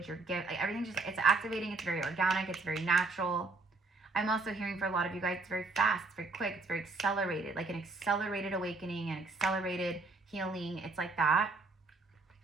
your gift, like everything it's activating, it's very organic, it's very natural. I'm also hearing for a lot of you guys, it's very fast, it's very quick, it's very accelerated, like an accelerated awakening, an accelerated healing. It's like that.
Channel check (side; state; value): left; quieter; 3.6 dB